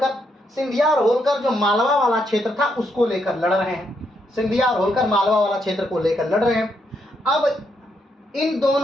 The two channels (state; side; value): normal; both; correlation 0.77